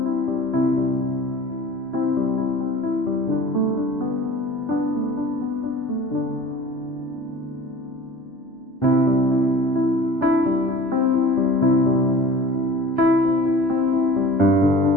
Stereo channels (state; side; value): normal; both; correlation 0.41